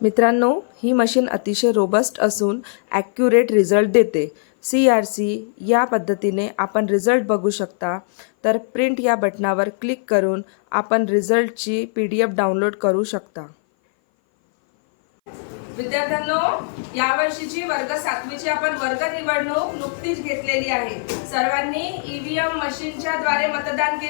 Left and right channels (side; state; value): right; silent; 59 dB below the other